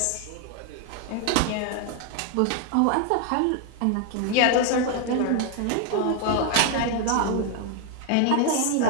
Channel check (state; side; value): different; both; correlation 0.00